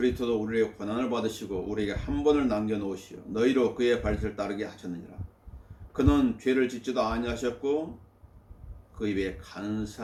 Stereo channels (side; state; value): both; identical; correlation 1.00